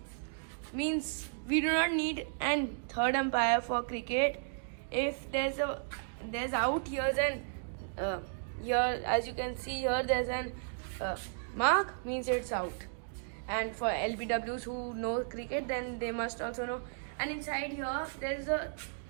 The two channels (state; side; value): silent; left; digital silence